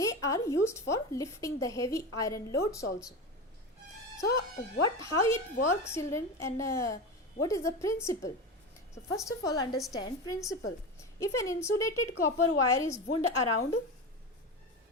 are used for lifting the heavy iron loads also. So how it works, children, and what is the principle? So first of all, understand principle. If an insulated copper wire is wound around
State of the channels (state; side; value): normal; both; correlation 0.23